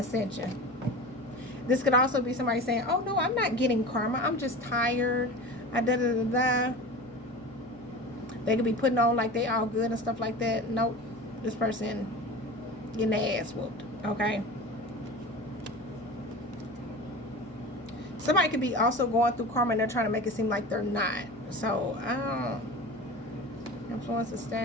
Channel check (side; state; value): left; noise; hum, 23 dB below the sound